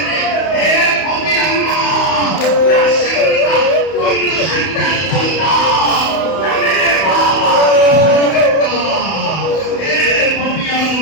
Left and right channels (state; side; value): late; right; 31 ms